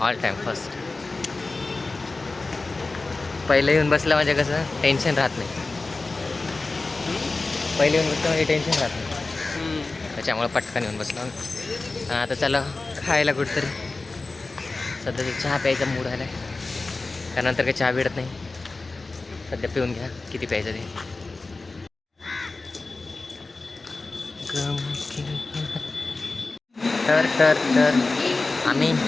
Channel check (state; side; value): quieter; right; 3.5 dB